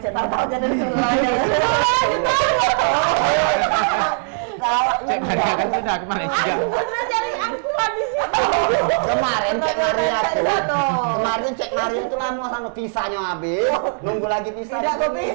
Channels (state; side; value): silent; left; 66 dB below the other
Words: tahu aja dari sebelahnya. Cek Maria kan sudah ke Malaysia. Bener cari aku di sini. Kemarin cek Maria tuh. Betul. Kemarin cek Maria itu lama sama pisahnya habis. Nunggu lagi pisah. Tidak mau